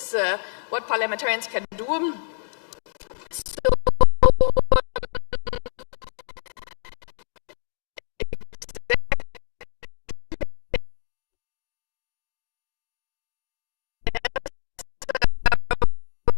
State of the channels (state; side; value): silent; right; 61 dB below the other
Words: what parliamentarians can do.